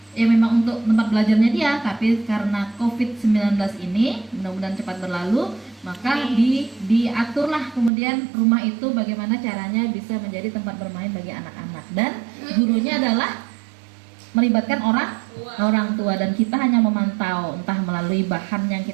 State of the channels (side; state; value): left; drops out; at 7.9 s